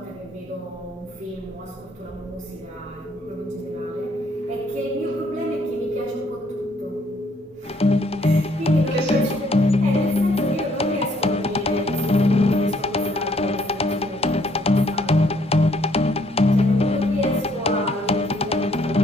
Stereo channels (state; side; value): normal; both; correlation 0.66